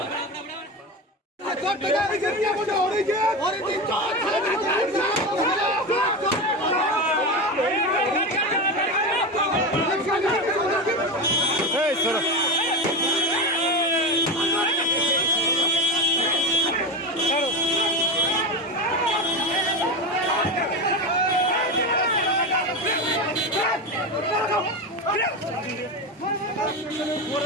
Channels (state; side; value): normal; both; correlation 0.20